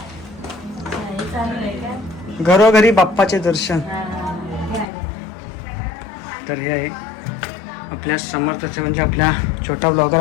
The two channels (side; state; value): right; drops out; at 4.9 s